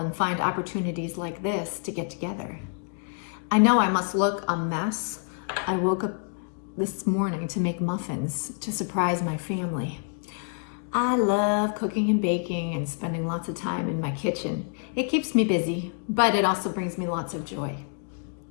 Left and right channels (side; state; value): right; silent; 56 dB below the other